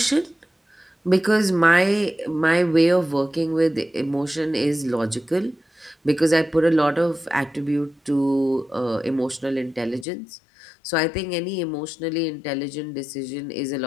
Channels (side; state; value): right; drops out; at 10.1 s